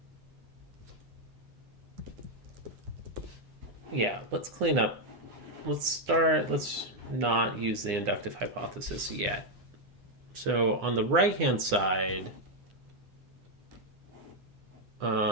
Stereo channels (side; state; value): left; late; 9.9 ms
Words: Yeah, let's clean up. Let's not use the inductive hypothesis yet. So on the right-hand side,